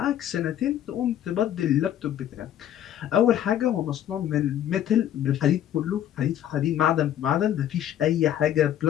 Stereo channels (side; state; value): right; quieter; 11.0 dB